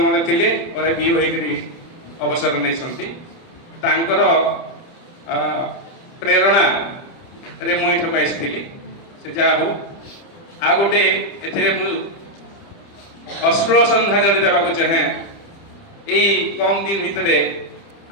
थिले, पर बीओ हेकरी अवसर नै संती। तांकर प्रेरणा रे मु इठक आइथिली। से जा हो आ गोटे एथिरे मु अश्रुल श्रद्धांजलि देबा को चाहे। एई कम दिन भितरे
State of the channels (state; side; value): late; right; 30 ms